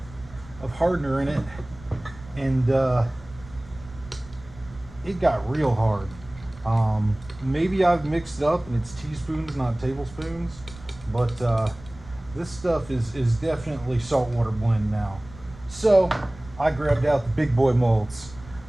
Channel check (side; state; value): right; noise; rumble, 19 dB below the sound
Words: of hardener in it, and it got real hard. Maybe I've mixed it up and it's teaspoons, not tablespoons, but this stuff is definitely saltwater blend now. So I grabbed out the big boy molds.